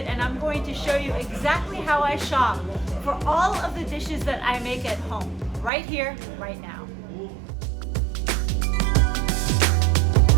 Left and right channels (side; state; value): left; drops out; at 5.7 s